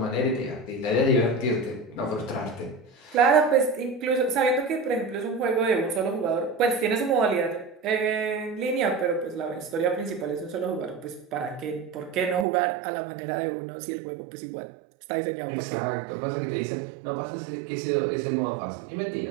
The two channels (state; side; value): drops out; left; at 12.5 s